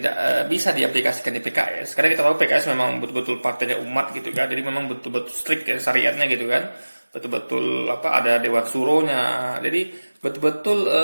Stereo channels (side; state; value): both; inverted; correlation -1.00